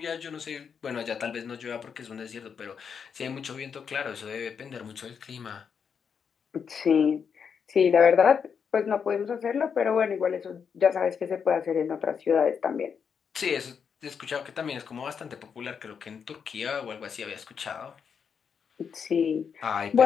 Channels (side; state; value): right; quieter; 6.7 dB